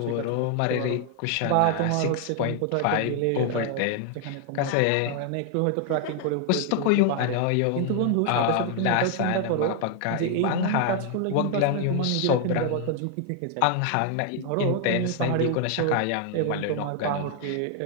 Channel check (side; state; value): both; different; correlation 0.00